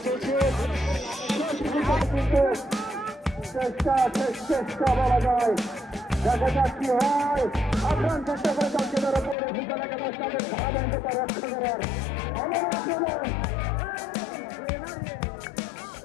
চলছে। চেষ্টা বলা যায়, দেখা যাক কি হয়। আক্রমণ চেষ্টা করে যাচ্ছে তার উপরে ফুটবল একাদশ তাদের ধারাবাহিকতা রক্ষা করার আবার আক্রমণ।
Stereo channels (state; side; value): drops out; right; at 9.3 s